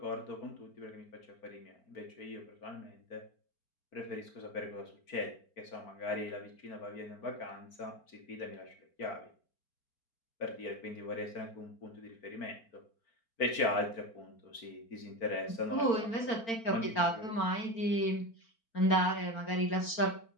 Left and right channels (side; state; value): right; late; 4.4 ms